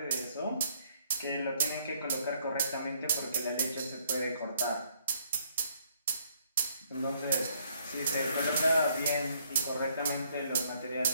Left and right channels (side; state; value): both; inverted; correlation -0.67